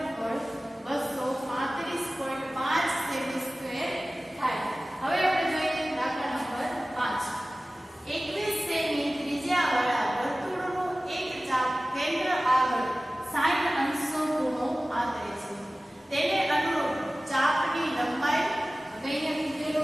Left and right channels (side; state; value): both; normal; correlation 0.97